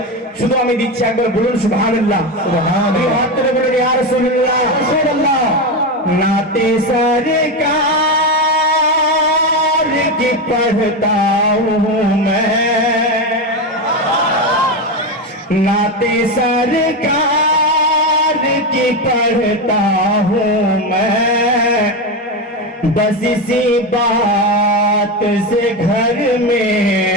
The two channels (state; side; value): normal; both; correlation 0.15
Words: শুধু আমি দিচ্ছি, একবার বলুন সুবহানাল্লাহ। সুবহানাল্লাহ, হাত তুলে বলুন ইয়া রাসূলুল্লাহ রাসূলুল্লাহ। नाते सरकार की पढ़ता हूँ मैं, नाते सरकार की पढ़ता हूँ मैं, बस इसी बात से घर में